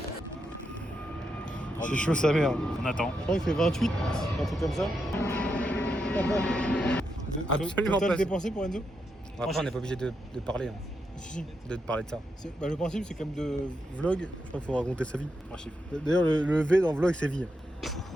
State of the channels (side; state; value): both; normal; correlation 0.83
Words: C'est chaud sa mère. On attend. Je crois qu'il fait 28, un truc comme ça. Absolument Total pas. dépensé pour Enzo? Après, on n'est pas obligé de parler, hein, Si. de parler de ça. Bah, le principe, c'est comme de vlog. Je crois qu'il faut raconter sa vie. 3 chiffres. D'ailleurs, le V dans vlog, c'est vie.